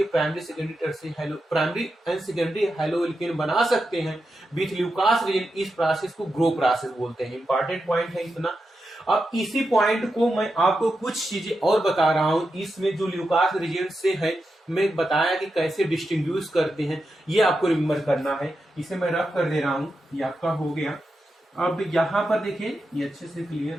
प्राइमरी एंड सेकेंडरी हाइलोएल्केन बना सकते हैं विथ ल्यूकास रिएजेंट। इस प्रोसेस को ग्रो प्रोसेस बोलते हैं। इंपॉर्टेंट पॉइंट है इतना। अब इसी पॉइंट को मैं आपको कुछ चीजें और बता रहा हूं। इसमें जो ल्यूकास रिएजेंट से है, मैं बताया कि कैसे डिस्टिंग्विश करते हैं, ये आपको रिमेम्बर करना है। इसे मैं रफ कर दे रहा हूं, ये आपका हो गया। अब यहां पर देखिए, ये अच्छे से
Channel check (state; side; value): normal; both; correlation 0.88